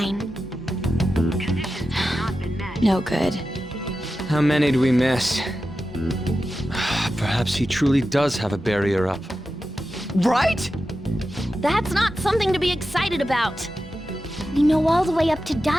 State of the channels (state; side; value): normal; both; correlation 0.92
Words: Conditions have not been met. No good. How many do we miss? Perhaps he truly does have a barrier up. Right? That's not something to be excited about. We know all the way up to